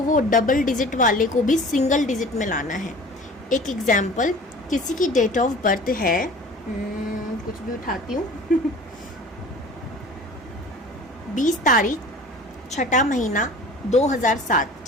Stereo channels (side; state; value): both; normal; correlation 0.43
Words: वो डबल डिजिट वाले को भी सिंगल डिजिट में लाना है। एक एग्जाम्पल, किसी की डेट ऑफ बर्थ है, कुछ भी उठाती हूँ 20 तारीख 6वां महीना 2007,